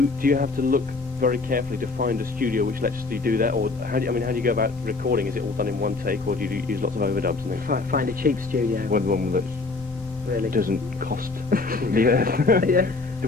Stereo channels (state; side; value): quieter; right; 3.7 dB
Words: have to look very carefully to find a studio which lets you do that, or how do you go about recording? Is it all done in one take, or do you use lots of overdubs and things? Find a cheap studio. One that really doesn't cost the earth. Yeah. The